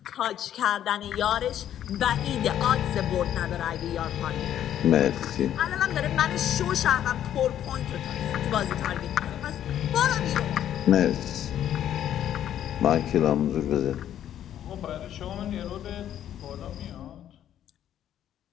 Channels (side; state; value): right; quieter; 10.8 dB